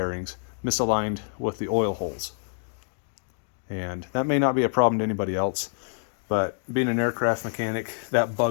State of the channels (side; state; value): right; silent; digital silence